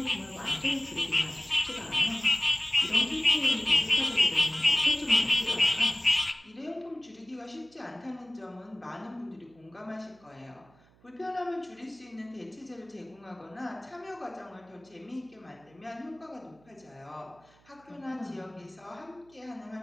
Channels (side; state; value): right; noise; hum, 29 dB below the sound